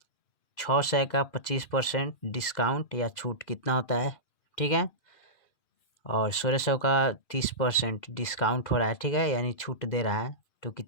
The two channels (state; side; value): late; right; 2.4 ms